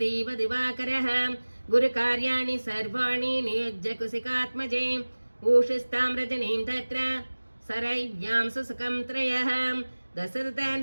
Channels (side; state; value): both; inverted; correlation -1.00